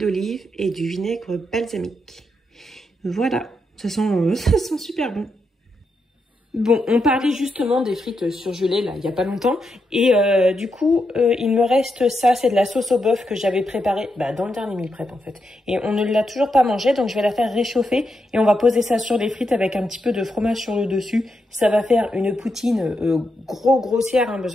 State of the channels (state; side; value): normal; both; correlation 0.84